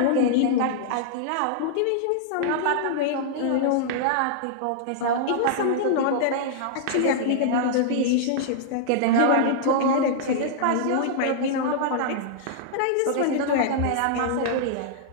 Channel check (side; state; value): both; different; correlation -0.01